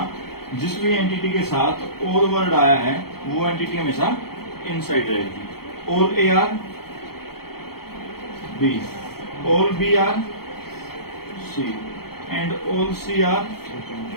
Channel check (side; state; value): right; late; 0.95 ms